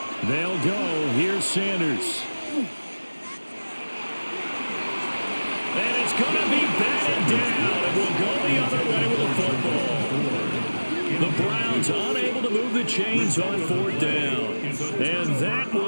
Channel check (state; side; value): inverted; both; correlation -1.00